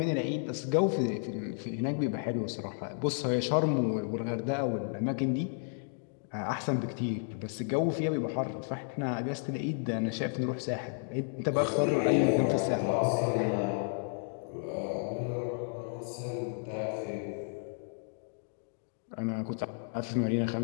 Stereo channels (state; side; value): silent; right; digital silence